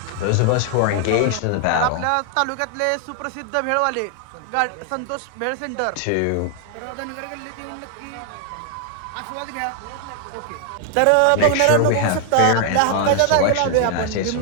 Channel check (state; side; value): different; both; correlation 0.00